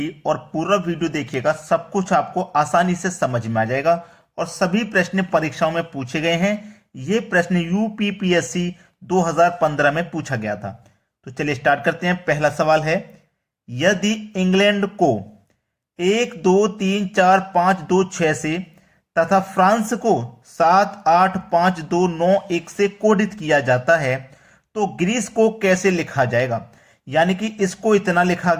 और पूरा वीडियो देखिएगा। सब कुछ आपको आसानी से समझ में आ जाएगा और सभी प्रश्न परीक्षाओं में पूछे गए हैं। ये प्रश्न यूपीपीएससी 2015 में पूछा गया था। तो चलिए स्टार्ट करते हैं। पहला सवाल है, यदि इंग्लैंड को 1 2 3 4 5 2 6 से तथा फ्रांस को 7 8 5 2 9 1 से कोडित किया जाता है तो ग्रीस को कैसे लिखा जाएगा। यानी कि इसको इतना लिखा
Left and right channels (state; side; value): identical; both; correlation 1.00